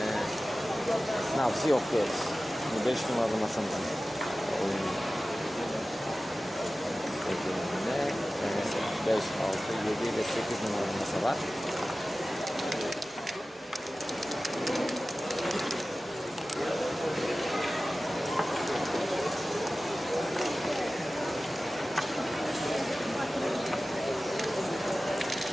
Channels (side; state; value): both; normal; correlation 0.96